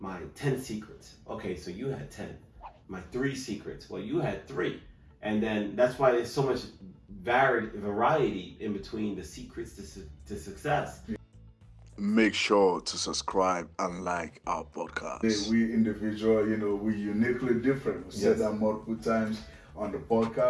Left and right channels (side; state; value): both; identical; correlation 1.00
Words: 10 secrets. Okay, so you had 10. My 3 secrets. Well, you had 3. And then that's why there's so much variety in between the secrets to success. Make sure to subscribe and like our podcast. We individual, we uniquely different. We said that multiple times on the